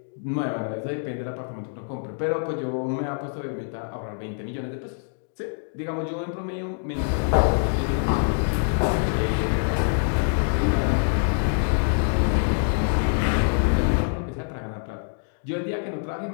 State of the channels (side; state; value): right; silent; digital silence